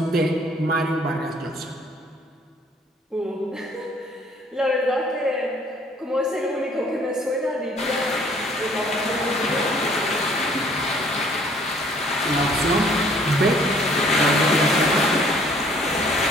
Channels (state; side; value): normal; both; correlation 0.58